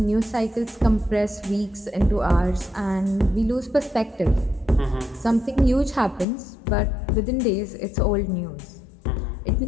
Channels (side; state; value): right; drops out; at 6.2 s